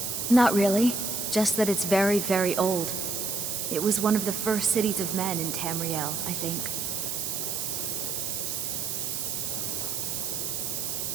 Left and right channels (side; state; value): right; noise; hiss, 2 dB below the sound